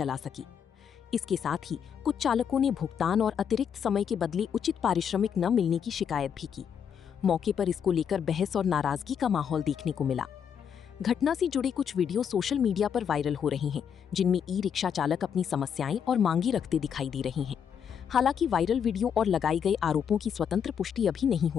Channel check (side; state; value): right; quieter; 7.8 dB